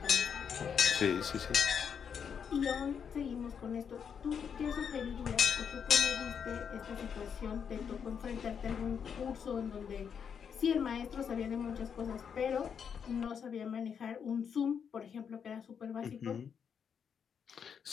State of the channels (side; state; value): right; quieter; 7.2 dB